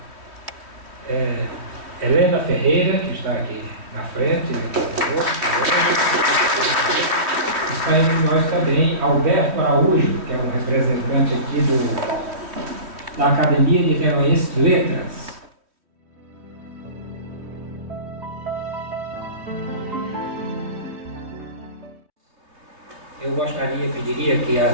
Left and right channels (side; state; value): left; late; 3.1 ms